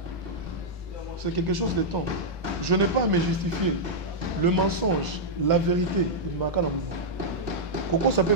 C'est quelque chose de temps. Je n'ai pas à me justifier. Le mensonge, la vérité, il m'a qu'à la mono. Koko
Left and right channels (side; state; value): both; normal; correlation -0.07